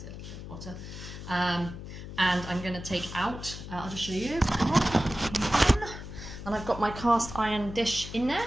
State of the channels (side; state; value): left; noise; hum, 11 dB below the sound